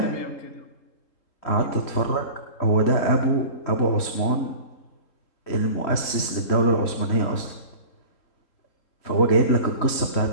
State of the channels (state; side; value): late; right; 3.8 ms